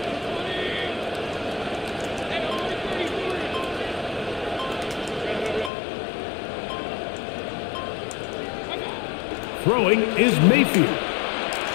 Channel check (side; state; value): right; drops out; at 5.7 s